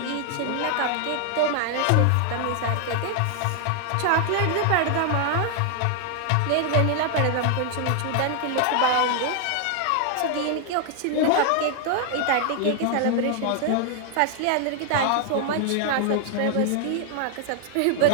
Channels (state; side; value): different; both; correlation 0.00